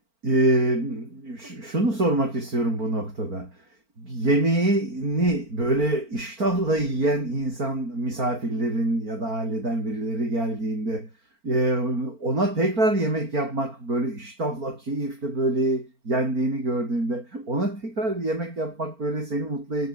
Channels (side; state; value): left; late; 4.4 ms